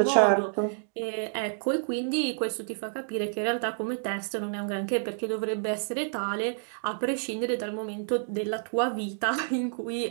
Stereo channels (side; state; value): left; silent; digital silence